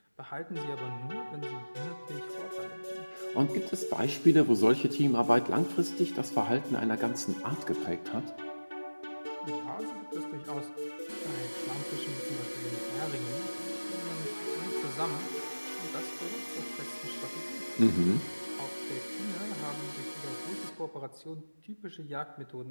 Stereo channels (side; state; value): both; inverted; correlation -1.00